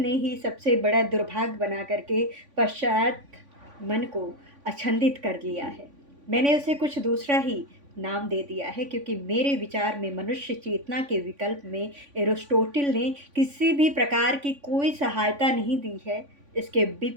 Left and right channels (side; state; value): left; late; 3.5 ms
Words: ही सबसे बड़ा दुर्भाग्य बना करके पश्चात मन को अछंदित कर लिया है। मैंने उसे कुछ दूसरा ही नाम दे दिया है क्योंकि मेरे विचार में मनुष्य चेतना के विकल्प में एरिस्टोटिल ने किसी भी प्रकार की कोई सहायता नहीं दी है। इसके